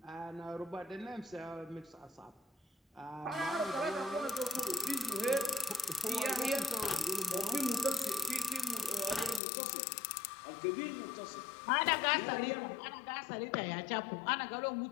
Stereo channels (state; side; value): drops out; right; at 9.4 s